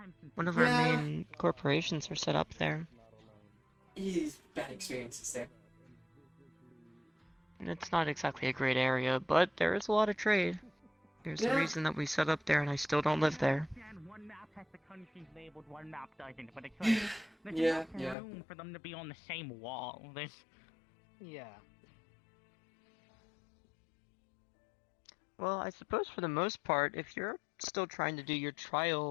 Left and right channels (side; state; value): right; drops out; at 18.2 s